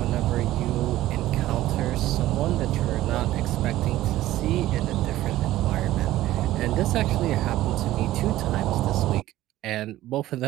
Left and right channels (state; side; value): quieter; left; 15.1 dB